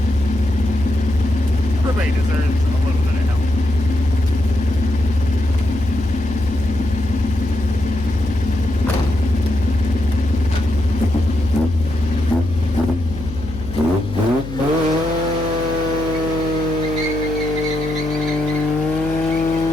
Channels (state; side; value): noise; left; hum, 9 dB below the sound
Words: Everybody deserves a little bit of help.